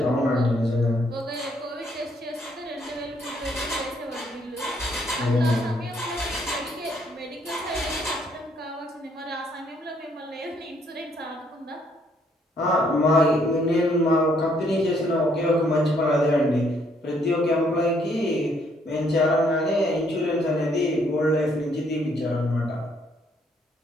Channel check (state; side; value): normal; both; correlation 0.68